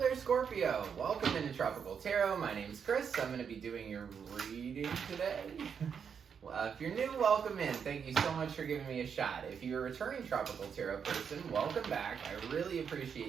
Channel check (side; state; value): left; quieter; 7.0 dB